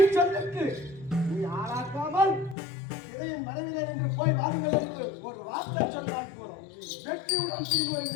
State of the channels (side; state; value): right; drops out; at 2.6 s